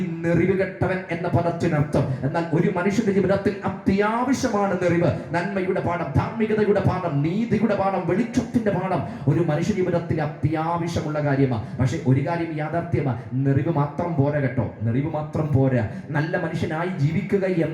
നെറിവുകെട്ടവൻ എന്ന പദത്തിനർത്ഥം. എന്നാൽ ഒരു മനുഷ്യന്റെ ജീവിതത്തിൽ അത്യാവശ്യമാണ് നെറിവ്. നന്മയുടെ പാഠം, ധാർമ്മികതയുടെ പാഠം, നീതിയുടെ പാഠം, വെളിച്ചത്തിന്റെ പാഠം ഒരു മനുഷ്യ ജീവിതത്തിൽ അത്യാവശ്യമുള്ള കാര്യമാണ്. പക്ഷെ ഒരു കാര്യം യാഥാർത്ഥ്യമാണ്: നെറിവ് മാത്രം പോരാ കേട്ടോ. നെറിവ് മാത്രം പോരാ. നല്ല മനുഷ്യനായി ജീവിക്കുക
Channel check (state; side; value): identical; both; correlation 1.00